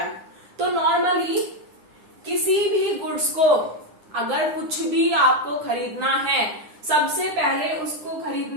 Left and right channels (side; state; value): left; late; 9.8 ms